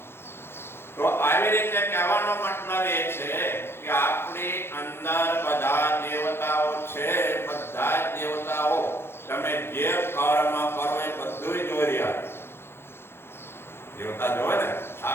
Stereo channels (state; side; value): late; right; 0.11 ms